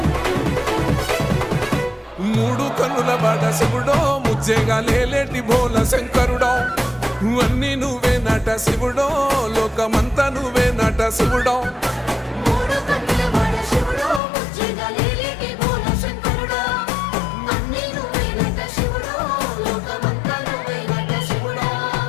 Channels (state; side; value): drops out; right; at 14.2 s